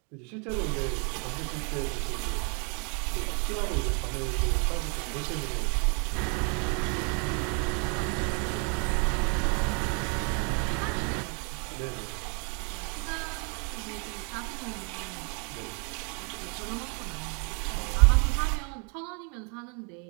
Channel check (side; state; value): left; quieter; 36.5 dB